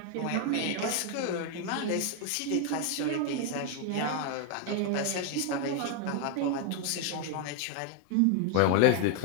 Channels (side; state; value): both; different; correlation 0.00